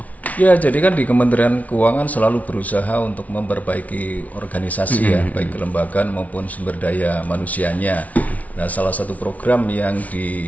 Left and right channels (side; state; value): right; late; 0.070 ms